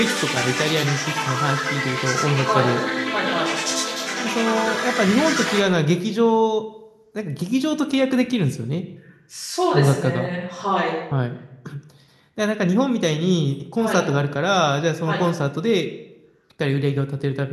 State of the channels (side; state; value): both; identical; correlation 1.00